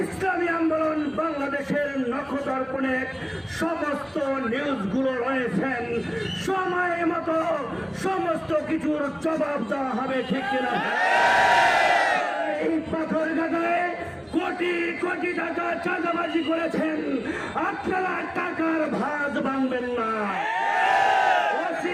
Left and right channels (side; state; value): both; identical; correlation 1.00